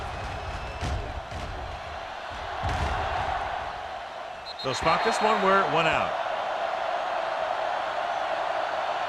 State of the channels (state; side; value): identical; both; correlation 1.00